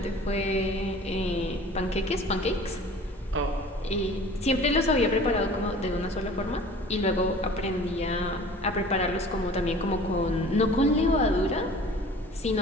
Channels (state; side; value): normal; both; correlation 0.45